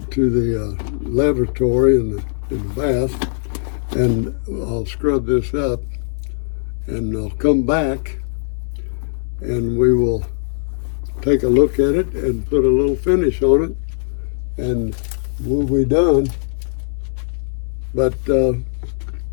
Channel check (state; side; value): silent; right; digital silence